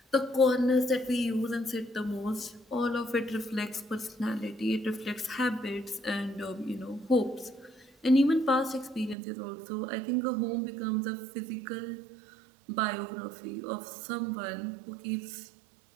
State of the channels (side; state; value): left; drops out; at 9.2 s